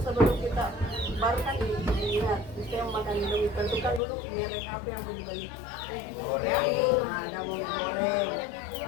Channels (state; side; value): drops out; right; at 4.0 s